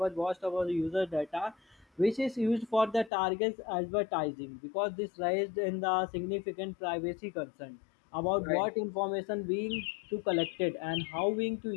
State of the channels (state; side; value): drops out; right; at 3.1 s